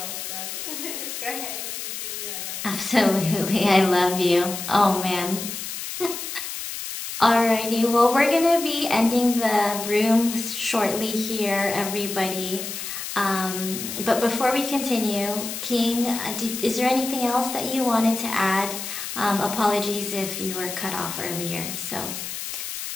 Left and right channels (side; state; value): left; noise; hiss, 7 dB below the sound